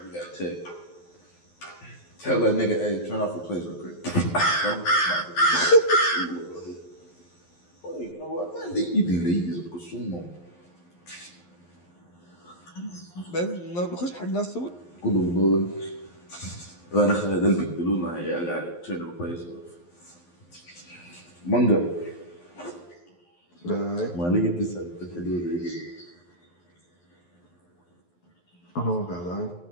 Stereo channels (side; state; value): right; late; 11 ms